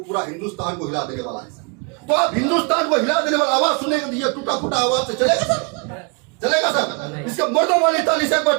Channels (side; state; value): left; quieter; 33.4 dB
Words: हिंदुस्तान को हिला देने वाला है सर। तो आप हिंदुस्तान को हिला देने वाला आवाज सुनेगा, ये टूटा फूटा आवाज से चलेगा सर? चलेगा सर? इसके मर्दों वाली ताली से मैं